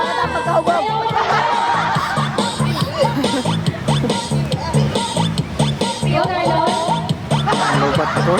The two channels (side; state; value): both; identical; correlation 1.00